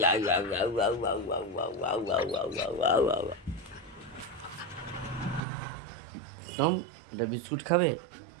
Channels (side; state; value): left; drops out; at 5.4 s